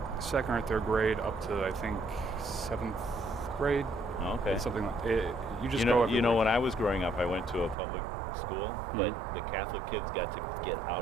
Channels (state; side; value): drops out; left; at 7.8 s